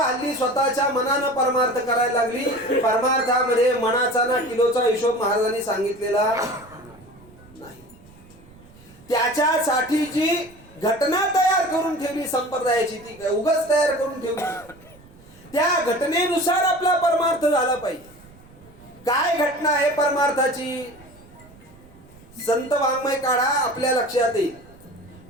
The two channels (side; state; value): right; noise; rumble, 24 dB below the sound